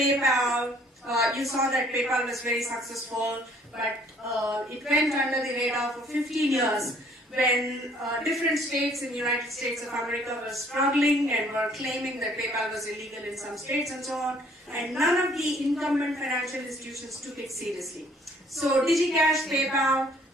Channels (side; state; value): both; normal; correlation 0.59